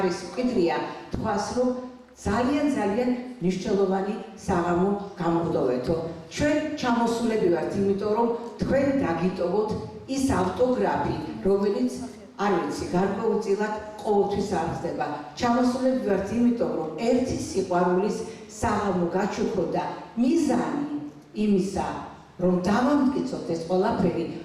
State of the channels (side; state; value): both; identical; correlation 1.00